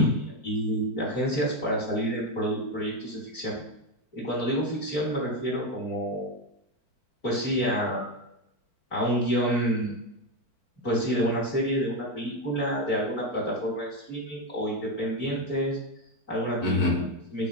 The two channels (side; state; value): right; late; 4.4 ms